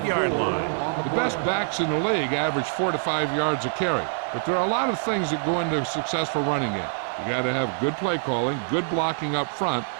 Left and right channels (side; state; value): left; silent; digital silence